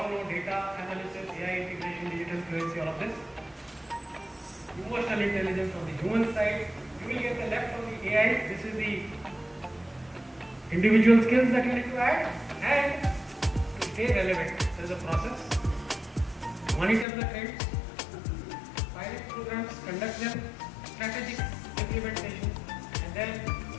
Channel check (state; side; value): drops out; right; at 17.1 s